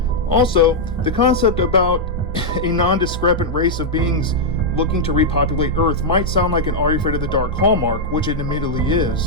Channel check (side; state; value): both; normal; correlation -0.04